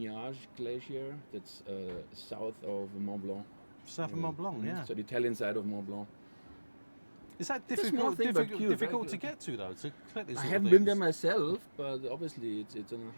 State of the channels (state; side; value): inverted; both; correlation -1.00